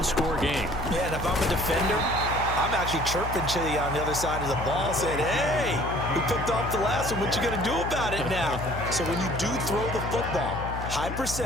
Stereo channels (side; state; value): left; noise; hum, 6 dB below the sound